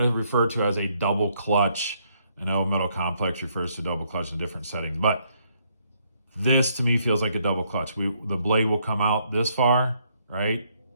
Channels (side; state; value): both; inverted; correlation -0.71